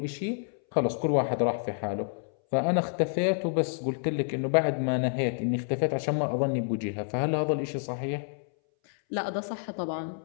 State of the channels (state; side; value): silent; right; 59 dB below the other